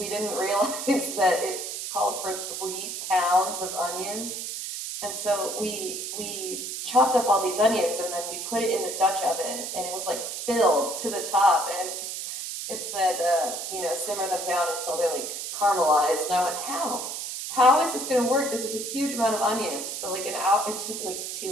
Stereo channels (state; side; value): noise; right; hiss, 5 dB below the sound